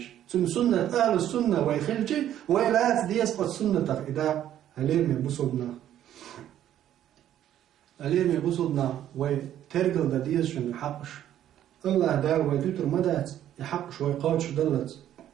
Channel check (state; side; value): quieter; left; 11.4 dB